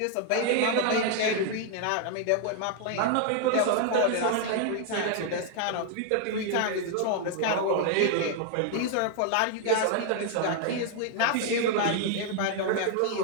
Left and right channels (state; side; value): different; both; correlation 0.00